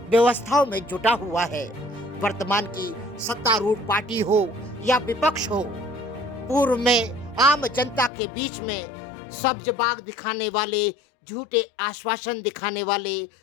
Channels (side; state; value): right; drops out; at 8.1 s